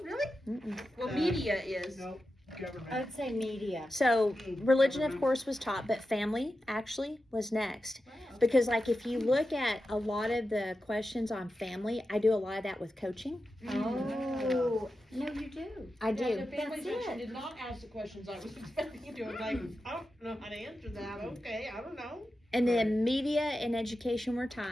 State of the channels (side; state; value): both; normal; correlation 0.91